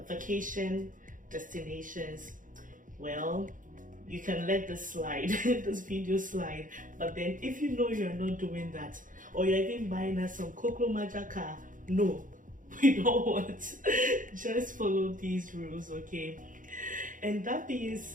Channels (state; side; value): late; left; 0.38 ms